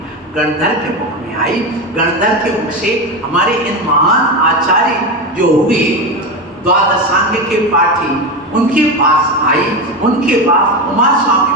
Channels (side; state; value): both; normal; correlation 0.18